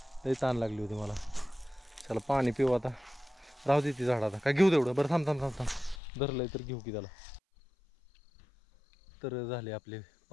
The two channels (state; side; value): drops out; right; at 6.0 s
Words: लई ताण लागली होती मला. त्याला पाणी पिऊ आता, राहू दे ती झाड आता काय घेऊ तेवढं. बरं थांब थांब थांब थांब धरलंय तर घेऊ की त्याला. तर झाले आपले